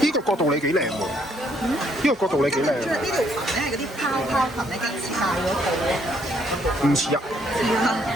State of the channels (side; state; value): both; normal; correlation 0.68